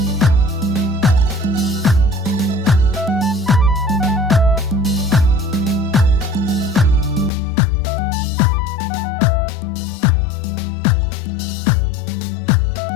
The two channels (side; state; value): right; drops out; at 7.3 s